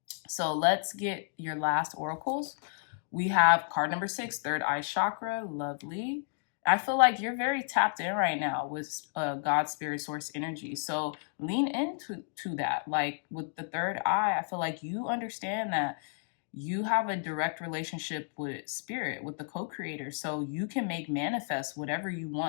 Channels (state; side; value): silent; right; digital silence